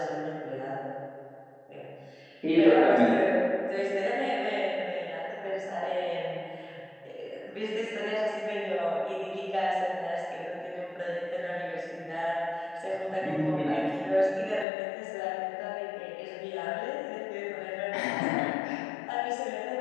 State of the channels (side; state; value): right; drops out; at 14.7 s